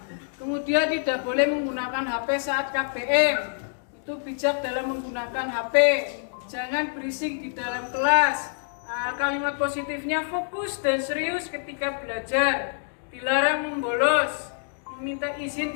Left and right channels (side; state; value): right; silent; digital silence